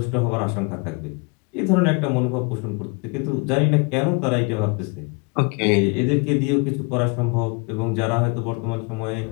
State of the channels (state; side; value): quieter; right; 31.1 dB